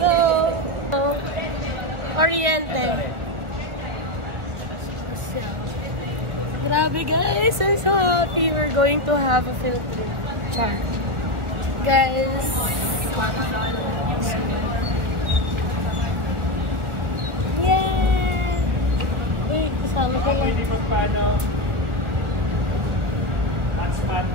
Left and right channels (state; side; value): late; left; 1.3 ms